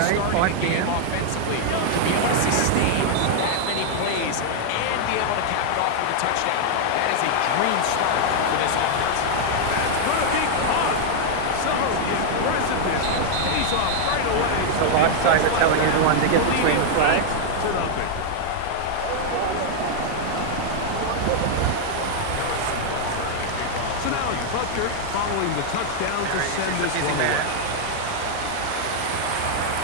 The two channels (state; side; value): different; both; correlation 0.00